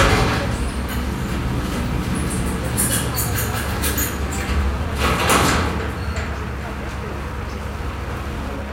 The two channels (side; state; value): both; identical; correlation 1.00